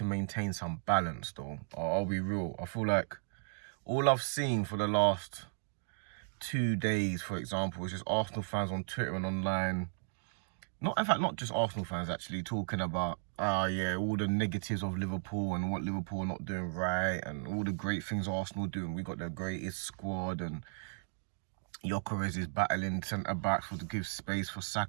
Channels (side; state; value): left; silent; digital silence